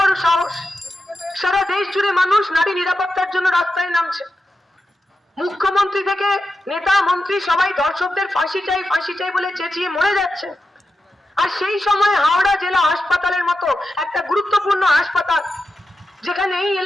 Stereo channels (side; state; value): both; normal; correlation 0.90